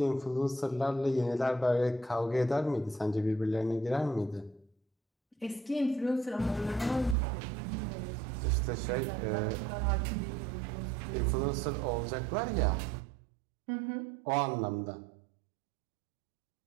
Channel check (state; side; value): drops out; left; at 7.2 s